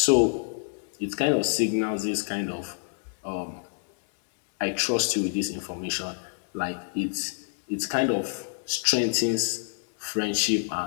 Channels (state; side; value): silent; right; 60 dB below the other